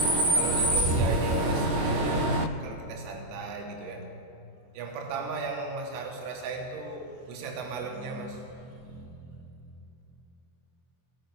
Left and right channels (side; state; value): left; late; 24 ms